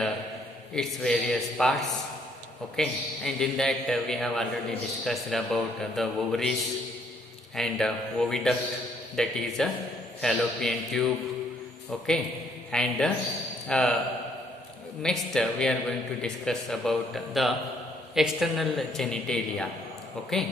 its various parts. Okay, and in that we have already discussed about the ovaries and oviduct, that is a fallopian tube. Okay, and next we are going to discuss about the external genitalia.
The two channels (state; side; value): normal; both; correlation 0.67